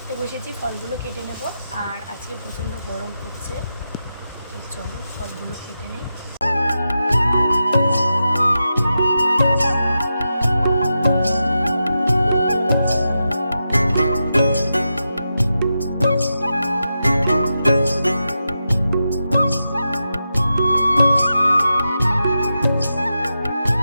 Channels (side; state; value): both; inverted; correlation -0.89